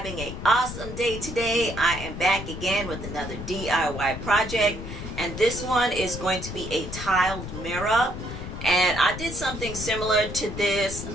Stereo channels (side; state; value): left; noise; rumble, 8 dB below the sound